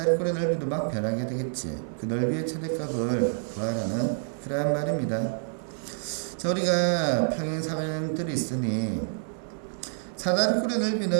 넓이도 막 변하게 되겠지. 그 넓이의 최대값을 구하라는 그러한 말입니다. 자, 우리가 평행사변형들이 있으니 사다리꼴의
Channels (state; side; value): silent; left; 56 dB below the other